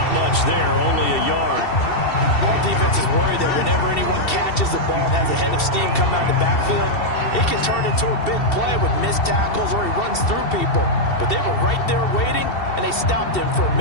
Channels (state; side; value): late; right; 2.7 ms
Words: much there, only a yard. All defenses worry that whenever anyone catches the ball and has a head of steam come out of the backfield, it can turn into a big play with missed tackles or he runs through people. But they were right there waiting, and they stopped him for a